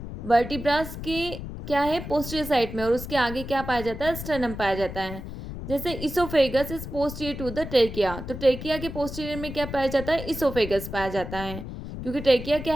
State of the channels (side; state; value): left; noise; rumble, 9 dB below the sound